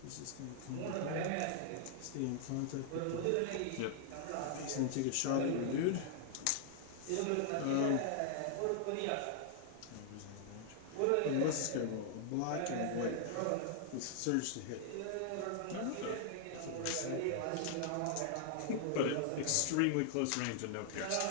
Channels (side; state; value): both; different; correlation -0.01